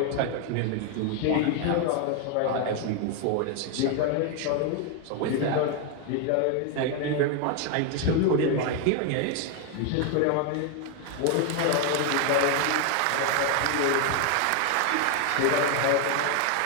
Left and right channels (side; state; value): both; different; correlation 0.01